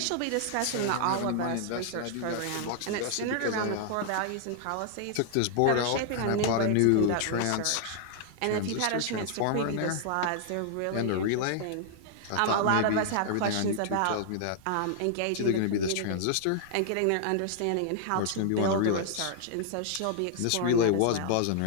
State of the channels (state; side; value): different; both; correlation -0.01